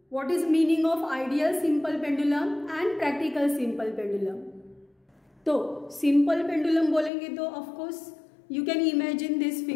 what is meaning of ideal simple pendulum and practical simple pendulum. तो simple pendulum बोलेंगे तो of course you can imagine this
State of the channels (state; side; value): drops out; right; at 7.1 s